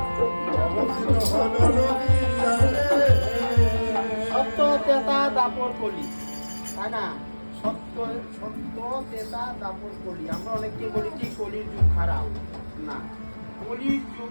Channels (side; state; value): both; inverted; correlation -1.00